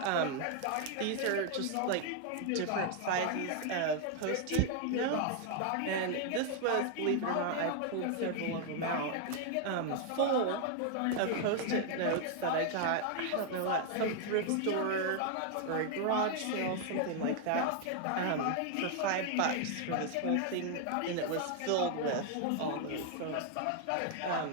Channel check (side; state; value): both; different; correlation 0.00